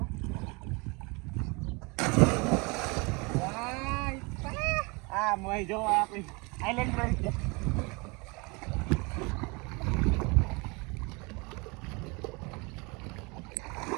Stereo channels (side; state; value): left; quieter; 28.5 dB